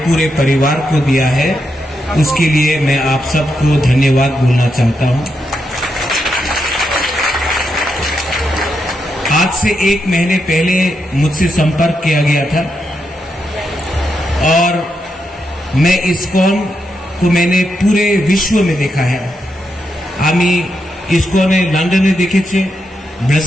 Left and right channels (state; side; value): normal; both; correlation 0.83